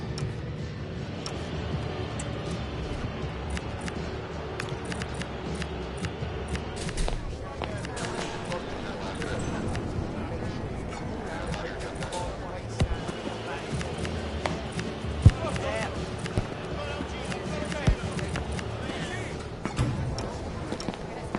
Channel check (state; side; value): identical; both; correlation 1.00